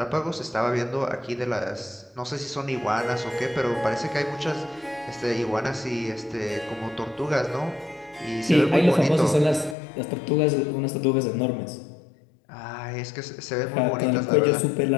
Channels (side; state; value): right; drops out; at 9.8 s